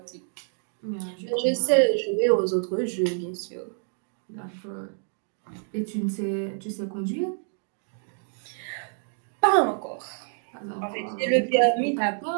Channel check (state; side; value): silent; left; 60 dB below the other